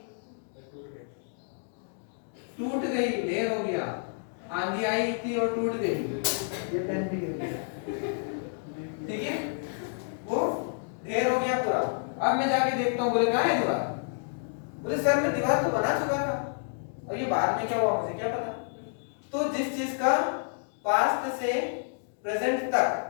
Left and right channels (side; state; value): right; silent; digital silence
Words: टूट गई, ढेर हो गया, आंधी आई थी और टूट गई, ये टेंट ठीक है, वो ढेर हो गया पूरा। अब मैं जाके देखता हूँ, बोले कहाँ है दीवार? बोले सर मैं दीवार तो बना चुका था, और ये बाद में क्या हुआ मुझे क्या पता। तो जिस चीज का पास्ट से प्रेजेंट